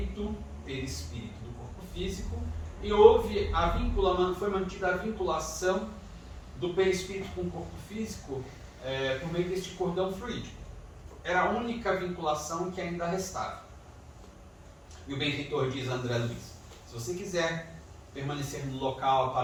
perispírito do corpo físico, e foi mantida a vinculação do perispírito com o corpo físico por meio deste cordão fluídico. Era a única vinculação que ainda restava. E o benfeitor diz a André Luiz: se você quiser permanecer no local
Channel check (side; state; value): both; identical; correlation 1.00